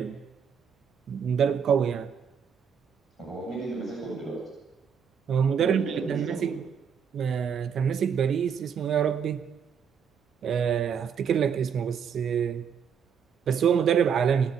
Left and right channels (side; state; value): left; quieter; 7.2 dB